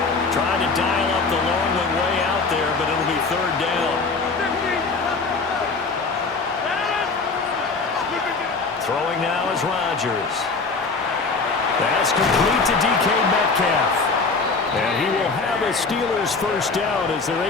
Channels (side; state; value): right; quieter; 4.2 dB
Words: Trying to dial up the long one way out there, but it'll be third down. Throwing now is Rodgers. That's complete to DK Metcalf. And he will have a Steelers first down as they're